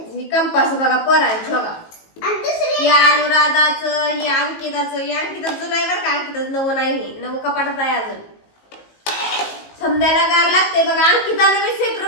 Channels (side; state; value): right; late; 19 ms